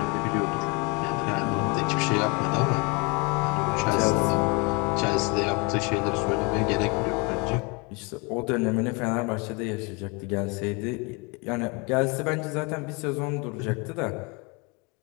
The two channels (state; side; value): quieter; right; 30.0 dB